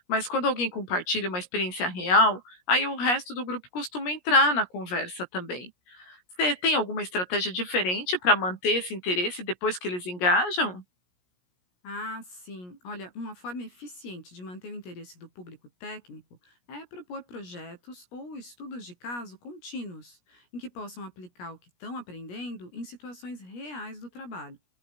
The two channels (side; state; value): right; late; 17 ms